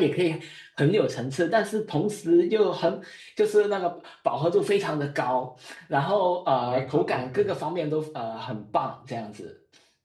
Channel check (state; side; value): identical; both; correlation 1.00